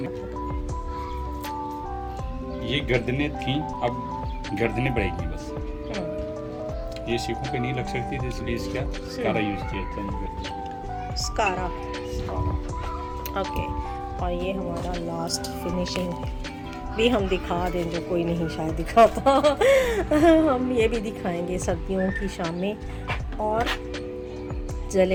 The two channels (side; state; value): both; identical; correlation 1.00